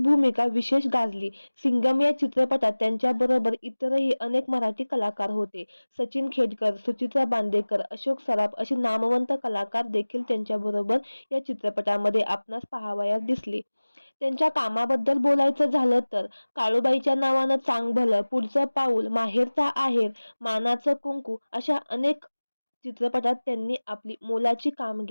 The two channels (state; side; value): inverted; both; correlation -1.00